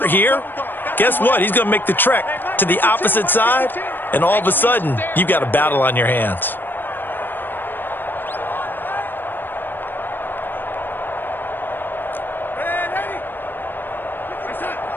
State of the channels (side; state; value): right; late; 0.094 ms